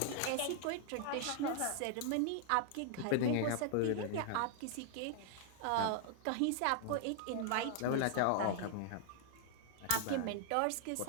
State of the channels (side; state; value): both; different; correlation 0.00